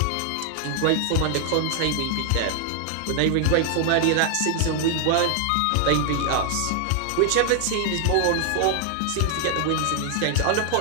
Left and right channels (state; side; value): different; both; correlation 0.00